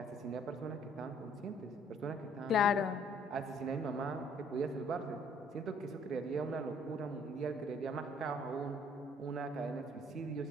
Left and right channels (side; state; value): both; normal; correlation 0.61